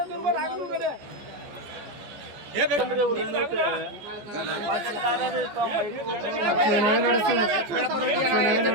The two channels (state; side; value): late; left; 14 ms